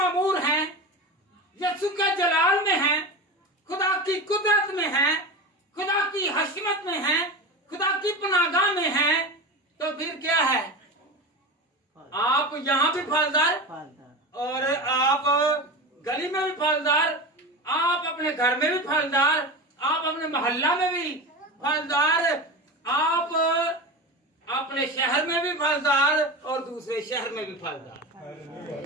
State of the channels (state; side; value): normal; both; correlation 0.26